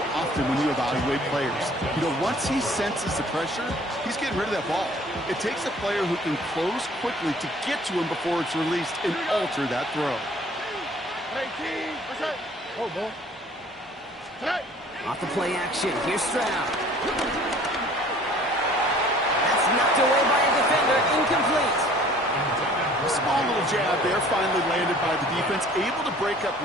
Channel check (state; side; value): normal; both; correlation 0.52